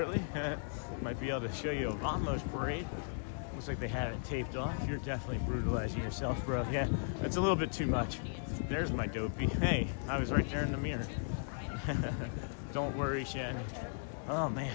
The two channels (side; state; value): right; silent; 53 dB below the other